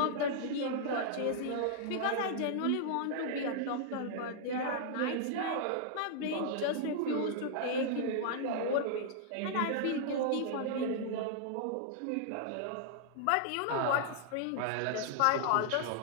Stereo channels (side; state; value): both; different; correlation -0.01